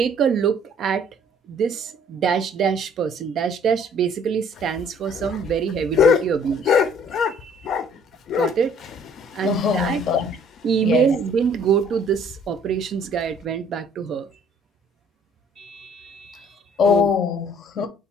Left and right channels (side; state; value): both; normal; correlation 0.58